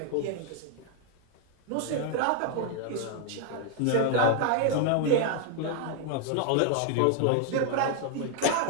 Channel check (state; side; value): different; both; correlation 0.00